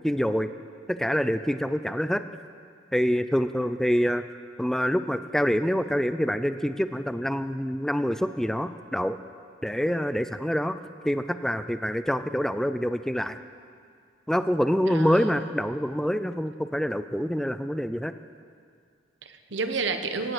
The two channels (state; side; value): normal; both; correlation 0.93